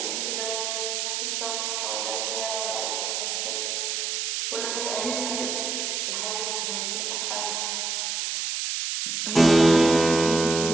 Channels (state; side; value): noise; right; hiss, 1 dB below the sound